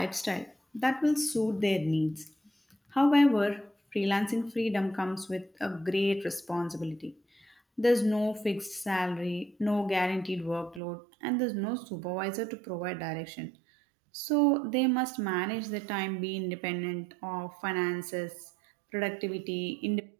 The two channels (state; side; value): drops out; left; at 10.8 s